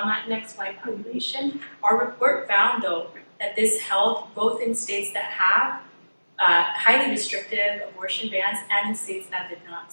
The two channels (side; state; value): both; inverted; correlation -1.00